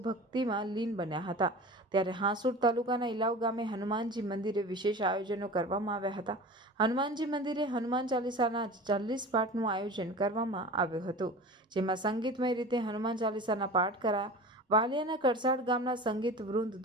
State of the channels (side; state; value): both; normal; correlation 0.36